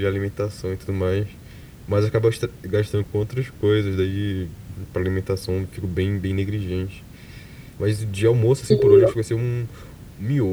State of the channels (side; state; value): both; identical; correlation 1.00